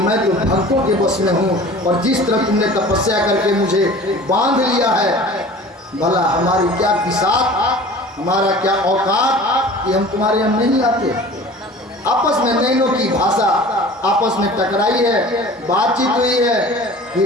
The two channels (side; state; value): both; normal; correlation 0.42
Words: तो भक्तों के बस में हूँ, और जिस तरह तुमने तपस्या करके मुझे बांध लिया है, भला हमारी क्या बिसात, हमारा क्या औकात कि हम तुम्हारे यहाँ नहीं आते। आपस में नैनों की भाषा आपस में टकराई है, बातचीत हुई है,